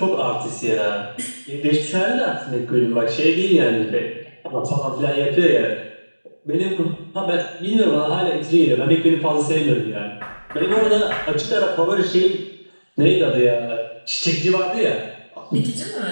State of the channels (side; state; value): both; inverted; correlation -1.00